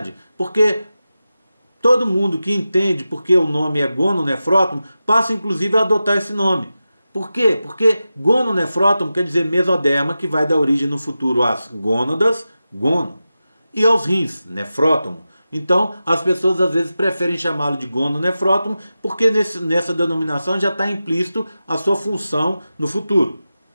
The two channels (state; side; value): inverted; both; correlation -0.93